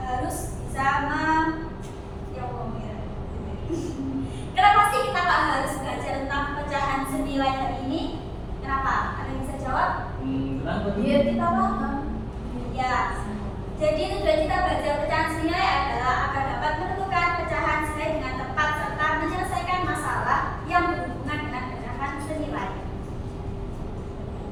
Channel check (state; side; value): identical; both; correlation 1.00